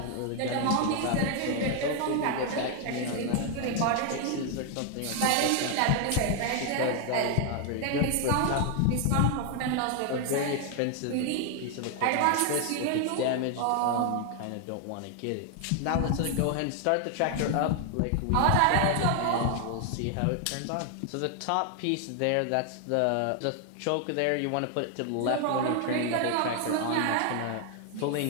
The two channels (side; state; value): both; different; correlation 0.00